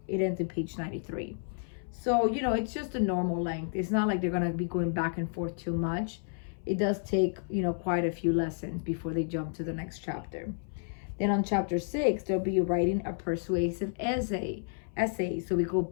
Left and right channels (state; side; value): silent; right; 57 dB below the other